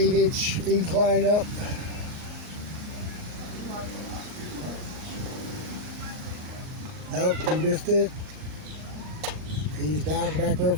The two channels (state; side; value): late; left; 38 ms